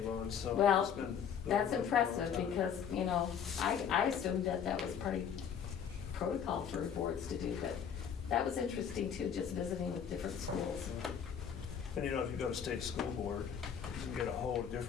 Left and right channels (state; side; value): quieter; right; 7.8 dB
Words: on, so. it's Well, been that's going on for a long impressive, time. because, you know, I assumed that was pretty protocol for boards to do, but that was interesting too, just visiting with different schools. And you know, if you go to state school board, you can get a whole